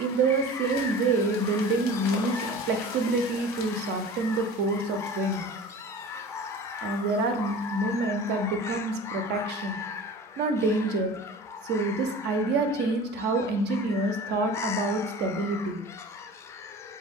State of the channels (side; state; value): both; normal; correlation 0.38